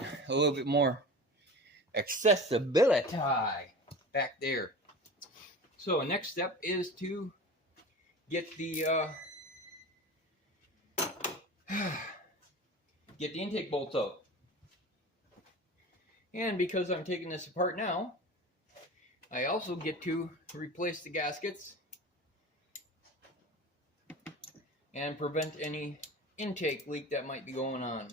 little bit more accessibility back there. So next step is to get the intake bolts out. And because I'm taking this apart now, I also get to replace the gaskets and prevent any intake leak that might be going on.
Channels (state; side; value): normal; both; correlation 0.34